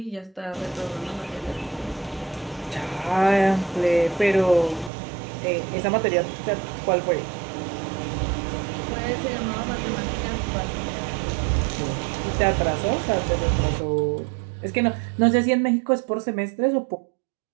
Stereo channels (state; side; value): drops out; left; at 4.9 s